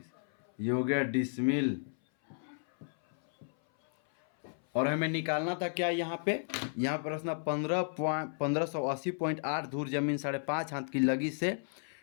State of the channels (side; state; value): right; silent; 56 dB below the other